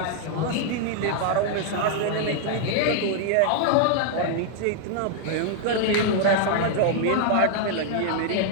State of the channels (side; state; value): both; different; correlation 0.00